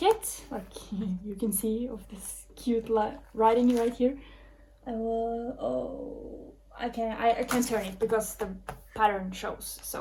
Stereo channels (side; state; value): both; identical; correlation 1.00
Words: like you can see, of this cute writing right here. I can't turn it because the pattern shows.